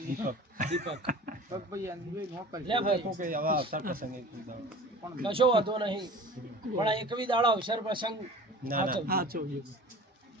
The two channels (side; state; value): both; normal; correlation 0.41